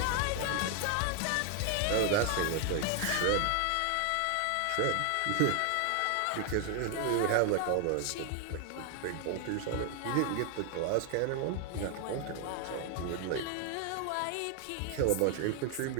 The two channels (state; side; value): different; both; correlation 0.00